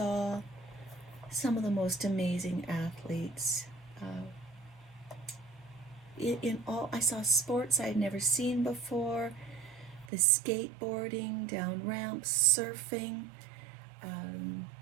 some of the most amazing athletes. I saw sports I'd never seen before, the skateboarding, down ramps, surfing,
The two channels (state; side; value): drops out; left; at 10.1 s